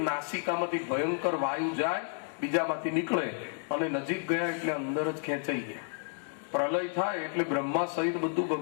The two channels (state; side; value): silent; right; 57 dB below the other